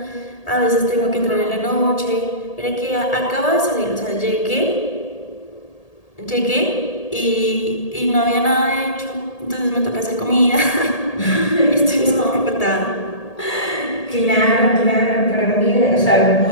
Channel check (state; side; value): late; right; 1.8 ms